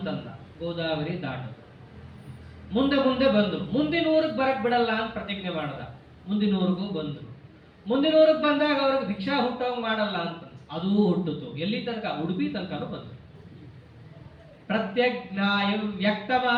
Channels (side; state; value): both; identical; correlation 1.00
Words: ಗೋದಾವರಿ ದಾಟದು. ಮುಂದೆ ಬಂದ್ರು. ಮುಂದಿನ ಊರಿಗೆ ಬರಕ್ ಬಿಡಲ್ಲ ಅಂತ ಪ್ರತಿಜ್ಞೆ ಮಾಡ್ದ. ಮುಂದಿನ ಊರಿಗೂ ಬಂದ್ರು. ಮುಂದಿನ ಊರಿಗೆ ಬಂದಾಗ ಅವ್ರಿಗೆ ಭಿಕ್ಷಾ ಹುಟ್ಟೋಂಗ್ ಮಾಡಲ್ಲ ಅಂತ ಅದೂ ಹುಟ್ಟಿತು. ಎಲ್ಲಿ ತನಕ? ಉಡುಪಿ ತನಕನೂ ಬಂದ್ರು. ಪ್ರತ್ಯಜ್ಞಾಯಂ ವ್ಯಕ್ತ